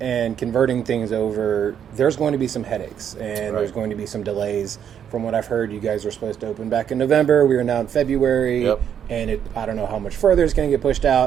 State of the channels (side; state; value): left; quieter; 8.8 dB